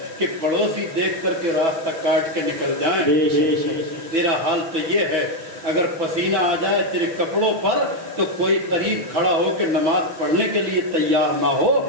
کہ پڑوسی دیکھ کر کے راستہ کاٹ کے نکل جائیں۔ تیرا حال تو یہ ہے، اگر پسینہ آ جائے تیرے کپڑوں پر تو کوئی قریب کھڑا ہو کے نماز پڑھنے کے لیے تیار نہ ہو،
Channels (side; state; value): left; late; 6.0 ms